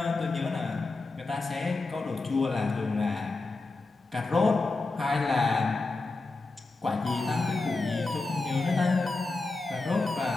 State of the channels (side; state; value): right; quieter; 3.5 dB